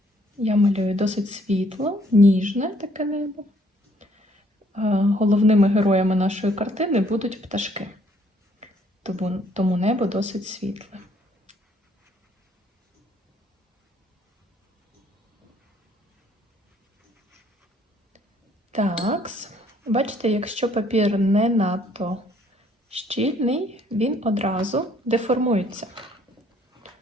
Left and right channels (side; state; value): both; normal; correlation 0.64